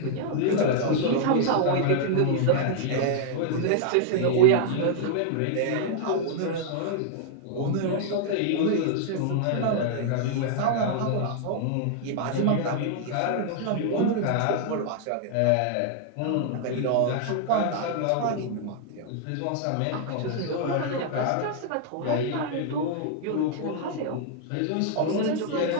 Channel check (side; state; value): both; different; correlation -0.01